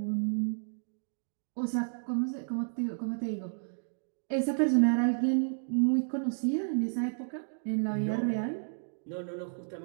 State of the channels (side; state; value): left; silent; digital silence